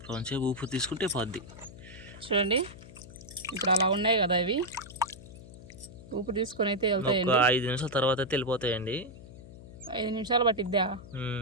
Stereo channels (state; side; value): noise; left; hum, 17 dB below the sound